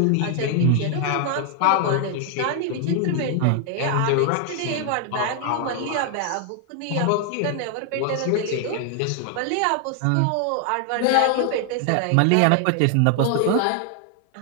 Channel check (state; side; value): different; both; correlation 0.00